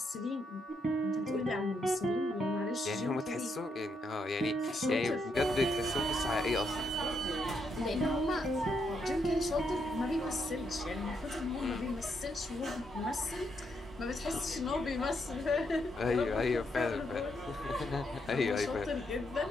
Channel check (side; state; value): both; normal; correlation 0.78